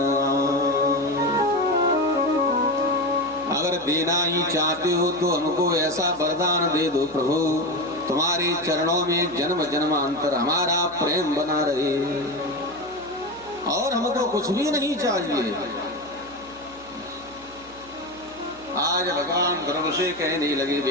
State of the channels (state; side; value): noise; right; hum, 23 dB below the sound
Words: अगर देना ही चाहते हो तो हमको ऐसा वरदान दे दो प्रभु, तुम्हारे चरणों में जन्म जन्मांतर हमारा प्रेम बना रहे, और हमको कुछ भी नहीं चाहिए। आज भगवान ध्रुव से कहने लगे,